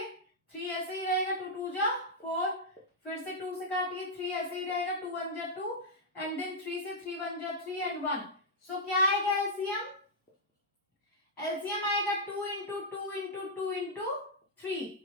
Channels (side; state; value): both; normal; correlation -0.06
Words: 3 ऐसे ही रहेगा, 2 2 जा 4, फिर से 2 से काटिए, 3 ऐसे ही रहेगा, 2 1 जा 2 एंड देन 3 से 3 1 जा 3 एंड 1। सो क्या आएगा एलसीएम? एलसीएम आएगा 2 × 2 × 2 × 3,